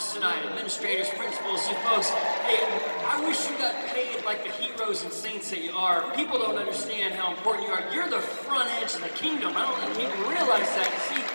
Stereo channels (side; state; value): both; inverted; correlation -1.00